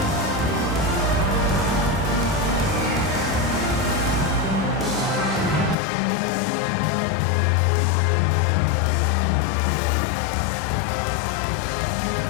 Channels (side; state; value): right; drops out; at 5.8 s